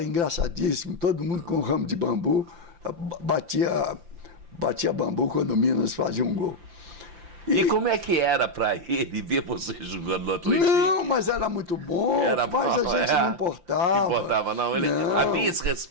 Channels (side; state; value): left; late; 5.8 ms